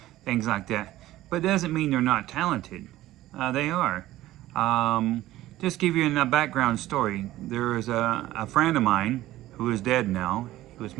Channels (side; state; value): left; quieter; 15.5 dB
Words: things like that, but it doesn't mean they're not talented. They are. Just give you a background story. There was a friend of mine who is dead now. He was